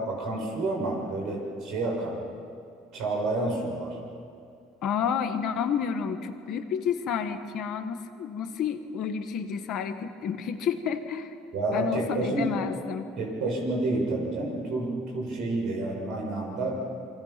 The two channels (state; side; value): normal; both; correlation 0.49